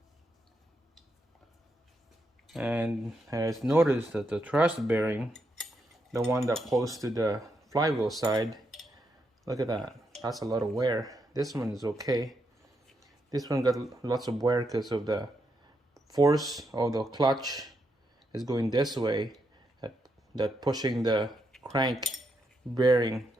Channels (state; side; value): normal; both; correlation 0.81